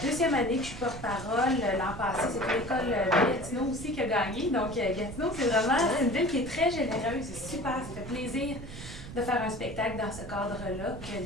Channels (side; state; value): right; noise; rumble, 12 dB below the sound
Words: année que je suis porte-parole. L'an passé, c'était l'école de Gatineau aussi qui a gagné. Donc, Gatineau, c'est vraiment une ville qui est très généreuse. C'est super, ça fait plaisir de faire un spectacle dans ce cadre-là. Que